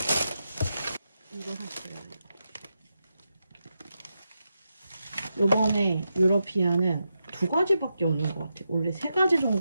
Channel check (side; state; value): both; inverted; correlation -0.87